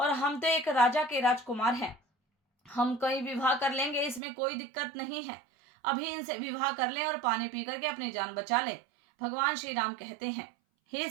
हम तो एक राजा के राजकुमार हैं, हम कहीं विवाह कर लेंगे, इसमें कोई दिक्कत नहीं है। अभी इनसे विवाह कर लें और पानी पी करके अपनी जान बचा लें। भगवान श्री राम कहते हैं, हे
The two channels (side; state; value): left; drops out; at 4.2 s